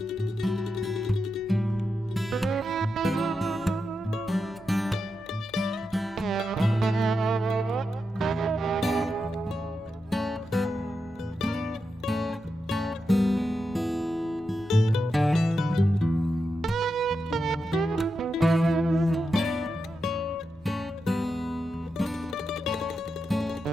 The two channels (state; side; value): normal; both; correlation 0.87